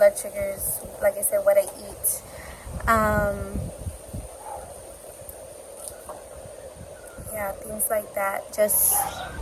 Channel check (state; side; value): identical; both; correlation 1.00